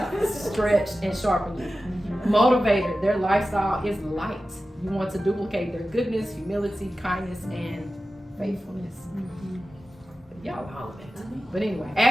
stretch, and sharpen you. Motivator, their lifestyle is light. You want to duplicate their goodness, humility, kindness, and faithfulness. Y'all holler back to me. But anyway,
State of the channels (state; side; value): normal; both; correlation 0.94